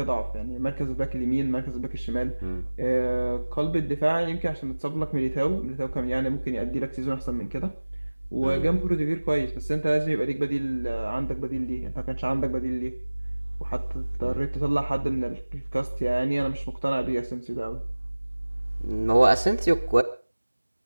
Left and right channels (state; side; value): inverted; both; correlation -1.00